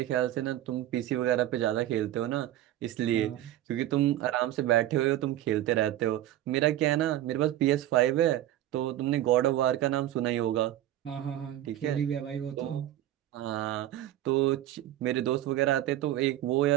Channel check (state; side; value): quieter; left; 13.4 dB